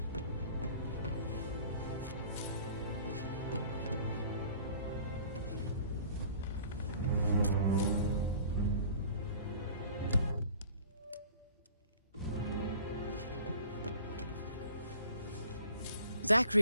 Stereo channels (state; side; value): inverted; both; correlation -0.48